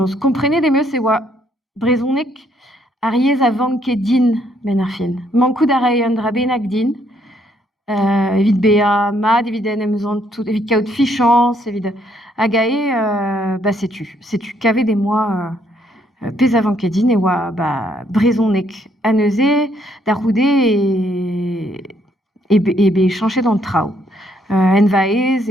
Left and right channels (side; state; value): both; normal; correlation 0.70